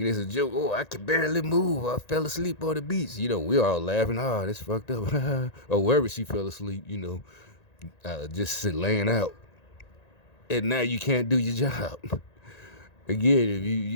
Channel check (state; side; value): late; right; 1.9 ms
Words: it's a joke. Oh, I can barely move. I fell asleep on the beach. We all laughing. Oh, that's fucked up. Or wherever she fell asleep, just laying out. And now you can't do your job. Again, if